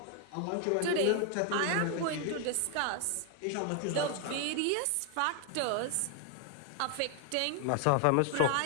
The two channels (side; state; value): both; different; correlation 0.00